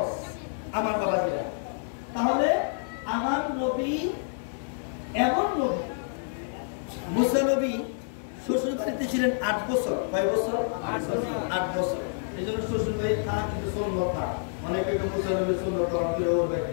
আমার বাবাজিরা। তাহলে আমার নবী এমন নবী, মুসা নবী শ্বশুর বাড়িতে ছিলেন 8 বছর। কয় বছর? 8 বছর। এই জন্য শ্বশুর বাড়ি থাকা কিন্তু সুন্নত। অনেকে মুসা নবীর সুন্নত করে ওরবে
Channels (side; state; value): right; silent; 59 dB below the other